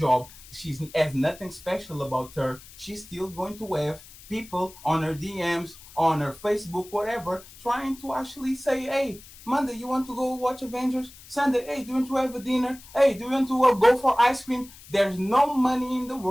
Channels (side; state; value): left; noise; hiss, 20 dB below the sound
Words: She has nothing special about her. She's still going to have people on her DMs, on her Facebook, whatever, trying to actually say, hey, Monday, you want to go watch Avengers? Sunday, hey, do you want to have a dinner? Hey, do you want to go for ice cream? There's no money in the